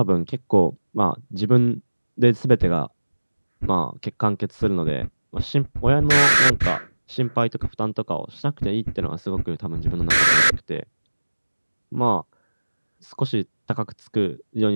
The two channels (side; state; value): both; inverted; correlation -1.00